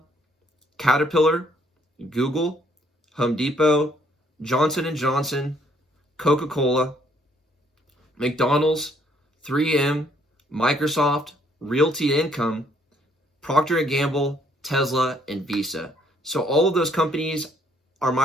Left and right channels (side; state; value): both; normal; correlation 0.66